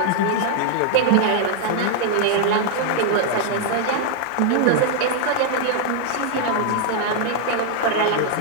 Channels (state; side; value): different; both; correlation 0.00